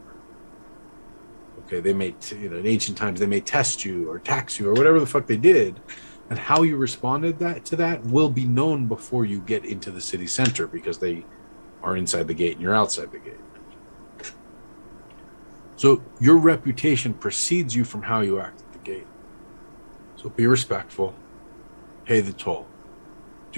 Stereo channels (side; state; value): both; inverted; correlation -1.00